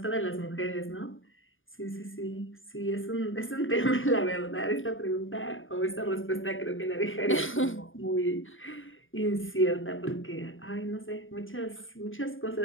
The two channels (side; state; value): right; late; 0.58 ms